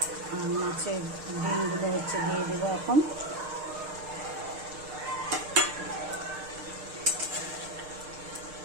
আর মাছের ডিমগুলো হচ্ছে দিয়ে দেবো এখন।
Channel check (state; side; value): late; left; 6.6 ms